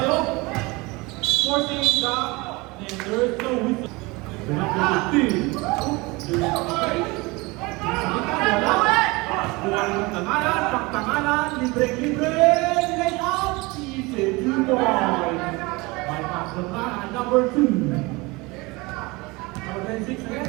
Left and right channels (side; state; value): left; quieter; 24.3 dB